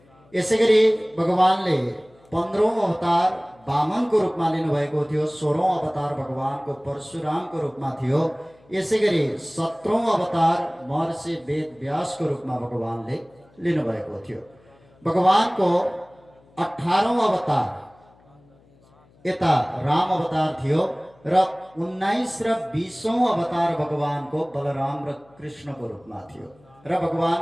यसैगरी भगवानले 15औं अवतार वामनको रूपमा लिनुभएको थियो। 16औं अवतार भगवानको परशुरामको रूपमा थियो। यसैगरी 17औं अवतार महर्षि वेद व्यासको रूपमा भगवानले लिनुभएको थियो। भगवानको 18औं अवतार यता राम अवतार थियो र 19 र 20औं अवतार भगवानको बलराम र कृष्णको रूपमा थियो र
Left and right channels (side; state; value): left; noise; hum, 30 dB below the sound